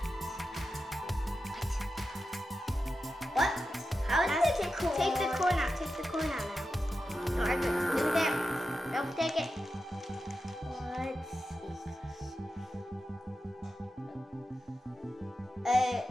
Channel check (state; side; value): normal; both; correlation 0.91